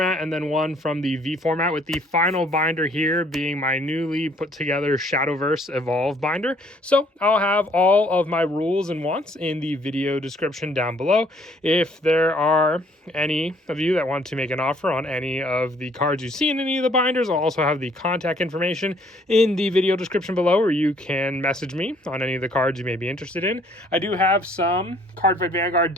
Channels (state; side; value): normal; both; correlation 0.62